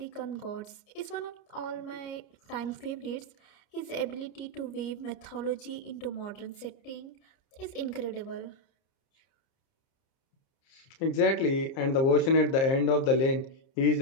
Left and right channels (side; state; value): right; late; 29 ms